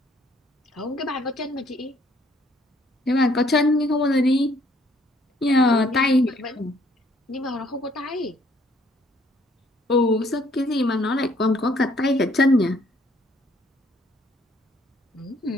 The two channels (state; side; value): normal; both; correlation 0.64